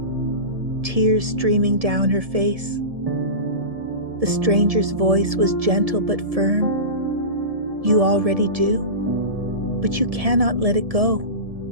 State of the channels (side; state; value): left; late; 1.7 ms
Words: tears streaming down her face. The stranger's voice was gentle but firm. You already do, but you cannot let it go